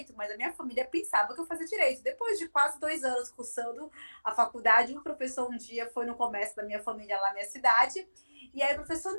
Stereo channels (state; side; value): inverted; both; correlation -1.00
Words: mas a minha família pensava que eu fazia direito. Depois de quase 2 anos cursando a faculdade, um professor um dia foi no comércio da minha família lá na minha cidade, e aí o professor,